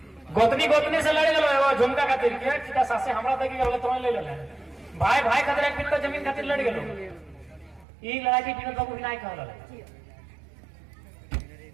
गोतनी से लड़े गलो झुमका खातिर के सासे हमरा तक गलो तो ले ले भाई भाई खातिर एक बिन जमीन खातिर लड़ गलो। ई लड़ाई की बिन बाबू नहीं कहल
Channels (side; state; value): left; drops out; at 7.9 s